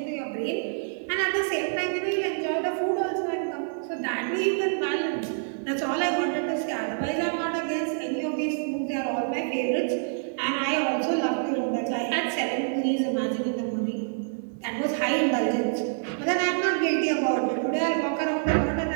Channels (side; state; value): left; silent; digital silence